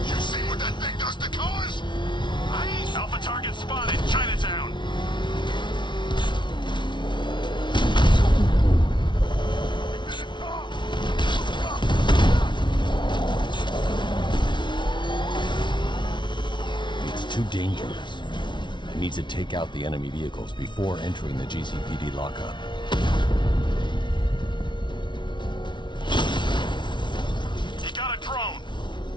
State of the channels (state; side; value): late; right; 0.23 ms